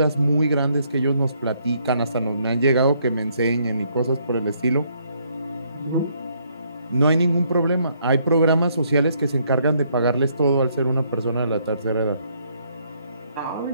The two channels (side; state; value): both; inverted; correlation -0.70